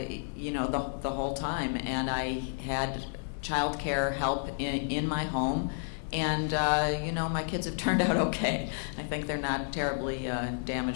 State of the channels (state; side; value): silent; right; digital silence